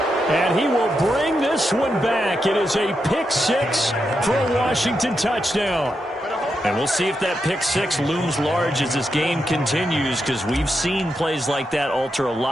And he will bring this one back. It is a pick 6 for a Washington touchdown. Better hold And we'll see if that pick six looms large as this game continues, because we've seen plays like that alter a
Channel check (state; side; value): normal; both; correlation 0.85